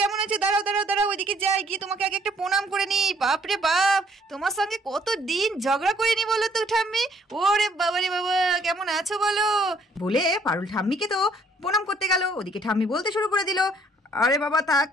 কেমন আছো? দাঁড়াও দাঁড়াও দাঁড়াও, ওইদিকে যাই, গিয়ে তোমাকে আগে একটা প্রণাম করে নি। বাপরে বাপ, তোমার সঙ্গে কত দিন ঝগড়া করিনি বলো তো ঠাম্মি। ওরে বাবারে বাবা, কেমন আছো বলো বলে পারুল ঠাম্মিকে তো প্রণাম করতে গেল। ওদিকে ঠাম্মি বলতে শুরু করে দিল, আরে বাবা থাক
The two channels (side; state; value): both; normal; correlation 0.63